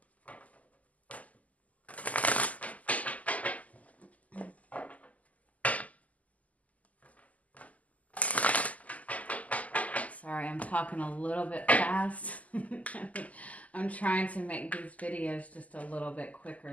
Sorry, I'm talking a little bit fast. I'm trying to make these videos just a little bit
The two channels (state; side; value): late; right; 0.074 ms